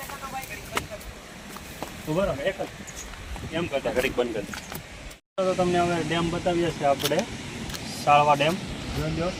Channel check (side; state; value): both; identical; correlation 1.00